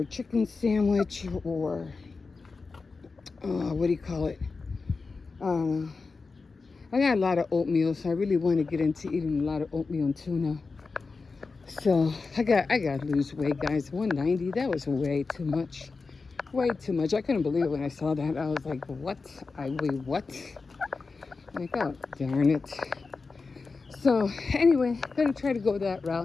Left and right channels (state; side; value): quieter; right; 4.3 dB